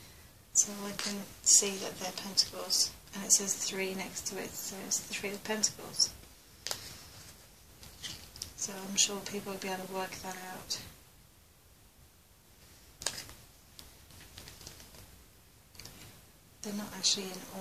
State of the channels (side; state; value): both; identical; correlation 1.00